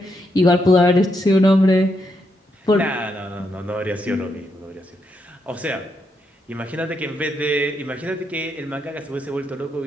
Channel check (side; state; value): both; normal; correlation 0.80